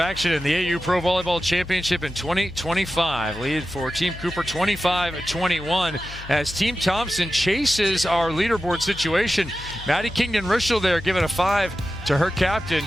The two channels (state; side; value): noise; left; hum, 14 dB below the sound